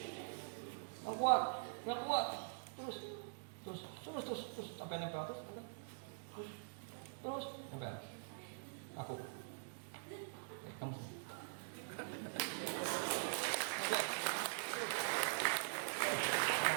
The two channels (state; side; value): silent; left; digital silence